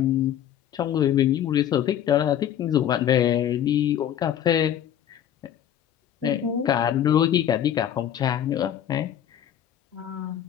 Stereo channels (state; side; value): quieter; right; 10.3 dB